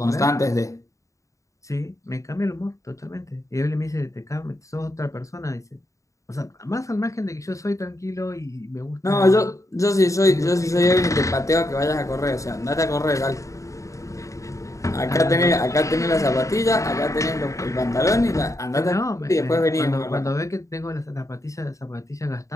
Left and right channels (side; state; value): right; late; 0.15 ms